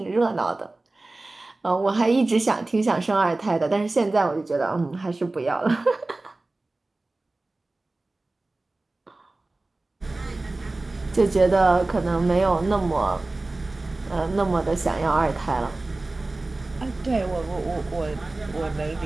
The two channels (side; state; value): left; quieter; 3.0 dB